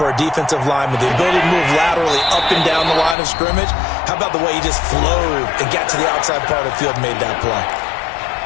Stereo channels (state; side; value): drops out; right; at 3.2 s